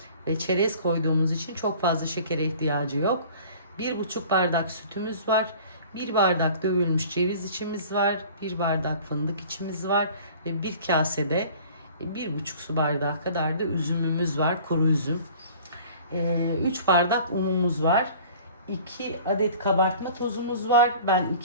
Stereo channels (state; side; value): inverted; both; correlation -0.47